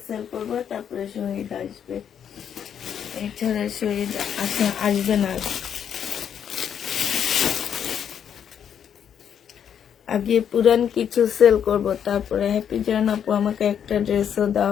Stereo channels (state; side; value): quieter; right; 8.5 dB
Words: সেল করবো, তারপরে শহীদ আসবে। এছাড়া শহীদ আসবে না। আগে পুরান কিছু সেল করব, তারপরে হ্যাপি জান আপু আমাকে একটা ড্রেসও